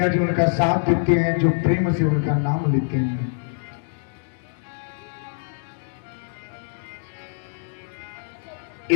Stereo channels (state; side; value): silent; right; digital silence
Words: जी उनका साथ देते हैं, जो प्रेम से उनका नाम लेते हैं।